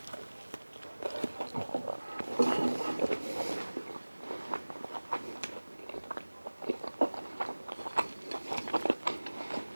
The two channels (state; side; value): inverted; both; correlation -1.00